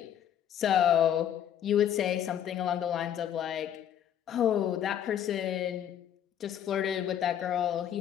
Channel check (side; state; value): right; quieter; 9.9 dB